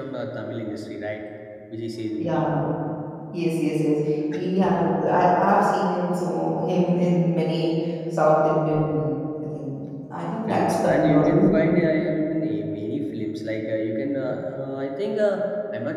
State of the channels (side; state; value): both; identical; correlation 1.00